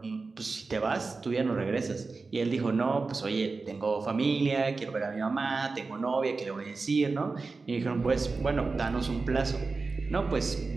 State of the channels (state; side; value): quieter; left; 4.0 dB